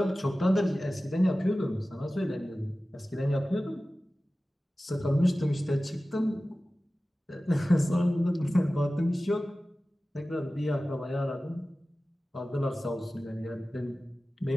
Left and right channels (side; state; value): both; normal; correlation 0.96